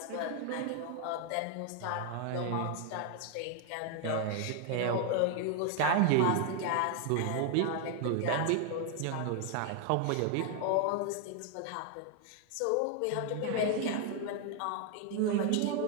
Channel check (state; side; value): different; both; correlation 0.00